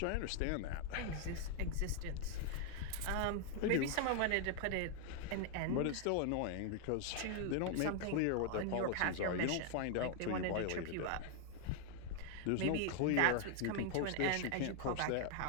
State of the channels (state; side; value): different; both; correlation 0.00